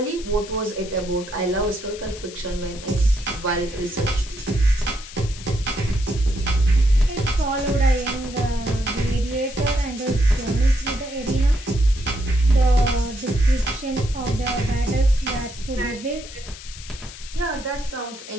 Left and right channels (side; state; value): left; noise; hiss, 15 dB below the sound